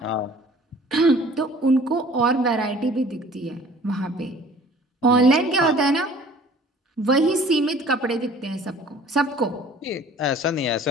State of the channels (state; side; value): normal; both; correlation 0.50